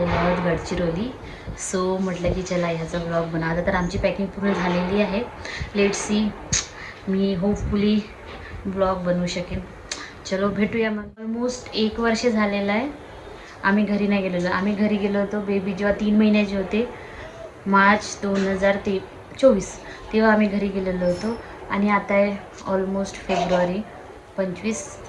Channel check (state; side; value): identical; both; correlation 1.00